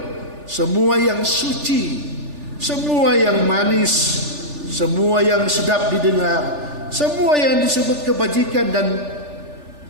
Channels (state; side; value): late; left; 3.4 ms